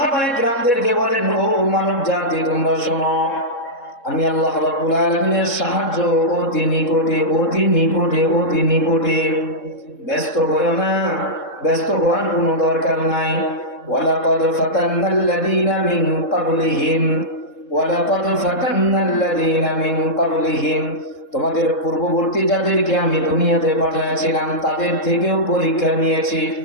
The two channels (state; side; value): late; right; 3.7 ms